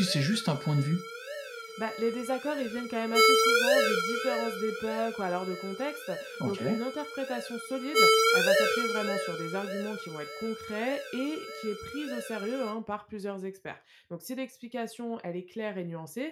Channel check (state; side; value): identical; both; correlation 1.00